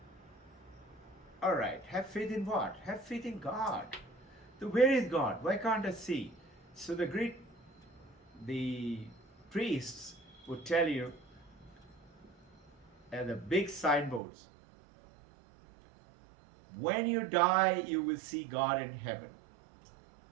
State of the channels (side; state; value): left; drops out; at 14.2 s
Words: Alright, have faith in what? Have faith in God. So where is God? Why can't I see? So the priests would tell you at the big signboards, when you die, you will see God in heaven.